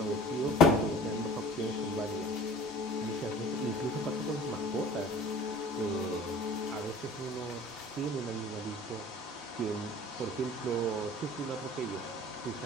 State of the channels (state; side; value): normal; both; correlation 0.44